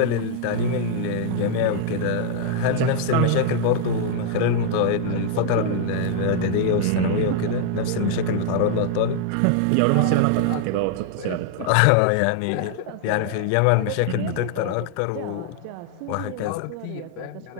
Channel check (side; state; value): both; different; correlation 0.00